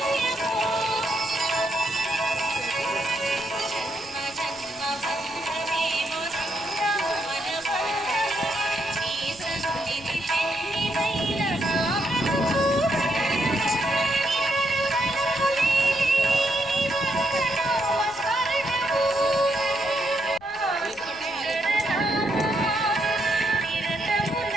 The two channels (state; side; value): noise; left; rumble, 24 dB below the sound